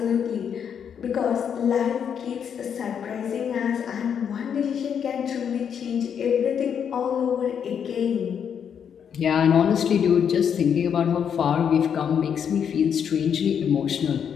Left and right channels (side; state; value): right; quieter; 7.8 dB